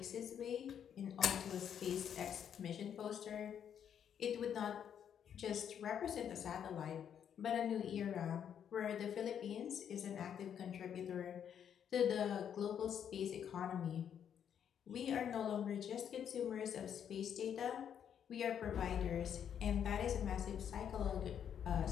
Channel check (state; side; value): quieter; right; 8.7 dB